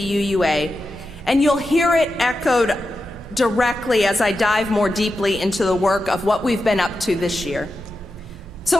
and you'll hear it echoed directly as I dive more deeply into the work of what we've been up to this year. So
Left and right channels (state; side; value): normal; both; correlation 0.90